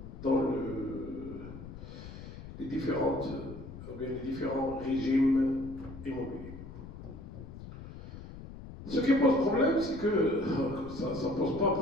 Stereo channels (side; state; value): left; noise; rumble, 13 dB below the sound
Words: les différents régimes immobiliers. Ce qui pose problème, c'est que ça ne pose pas